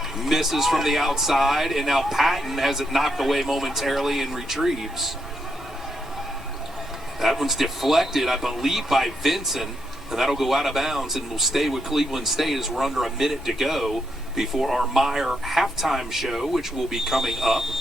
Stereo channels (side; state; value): both; normal; correlation 0.80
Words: misses from the outside, and now Patton has it knocked away momentarily and retrieves. That one's deflected, I believe, by Vincent, and that'll go out of bounds and will stay with Cleveland State as we're under a minute to go before our Meyer halftime show, which will be coming up.